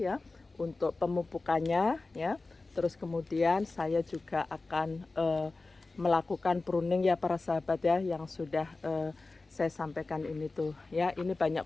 untuk pemupukannya ya. Terus kemudian saya juga akan melakukan pruning ya para sahabat ya, yang sudah saya sampaikan ini tuh ya. Ini banyak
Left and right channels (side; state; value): right; quieter; 3.5 dB